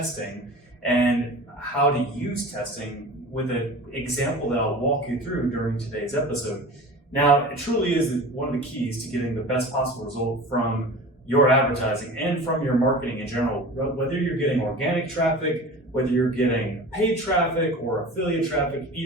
and how to use testing with an example that I'll walk you through during today's episode. Now, it truly is one of the keys to getting the best possible result from your advertising and from your marketing in general. Whether you're getting organic traffic, whether you're getting paid traffic or affiliate traffic,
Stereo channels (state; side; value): normal; both; correlation 0.36